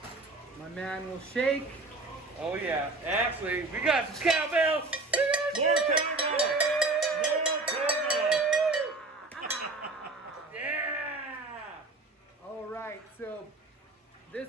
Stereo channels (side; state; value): left; quieter; 3.2 dB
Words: My man will shake. Oh yeah. Actually, we got some cowbells. More cowbell! More cowbell! Yeah! All right, so